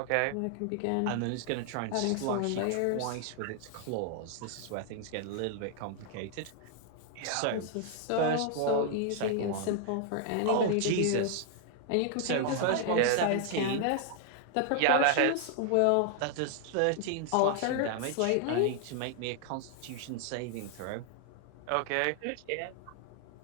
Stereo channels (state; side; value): different; both; correlation 0.00